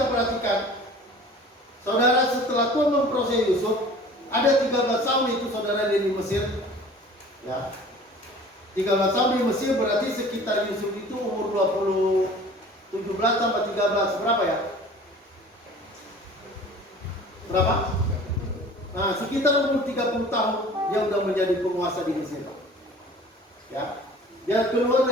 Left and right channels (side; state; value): both; normal; correlation 0.45